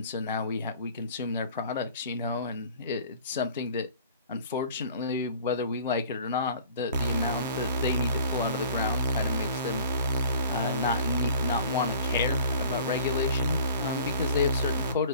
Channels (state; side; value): inverted; both; correlation -0.46